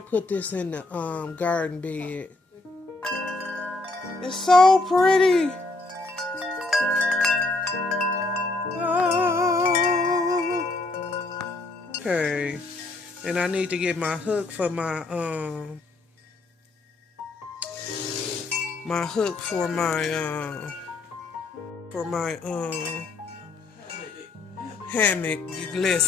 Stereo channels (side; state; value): right; quieter; 3.3 dB